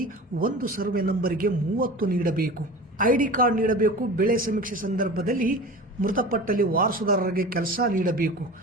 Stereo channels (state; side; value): normal; both; correlation 0.35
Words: ಒಂದು ಸರ್ವೆ ನಂಬರ್ಗೆ 30 ನೀಡಬೇಕು, ಐಡಿ ಕಾರ್ಡ್ ನೀಡಬೇಕು, ಬೆಳೆ ಸಮೀಕ್ಷೆ ಸಂದರ್ಭದಲ್ಲಿ ಮೃತಪಟ್ಟಲ್ಲಿ ವಾರಸುದಾರರಿಗೆ ಕೆಲಸ ನೀಡಬೇಕು,